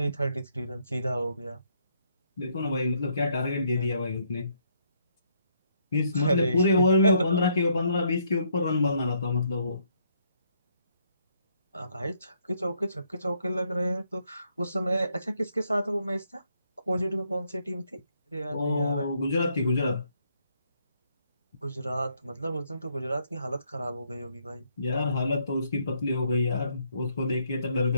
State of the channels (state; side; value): inverted; both; correlation -0.71